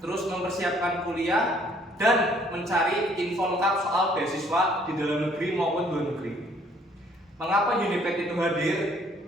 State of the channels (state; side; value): normal; both; correlation 0.62